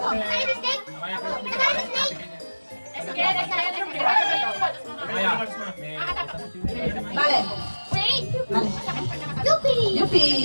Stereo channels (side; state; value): both; inverted; correlation -1.00